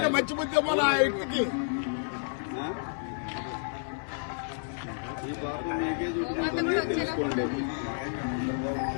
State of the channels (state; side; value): silent; right; 58 dB below the other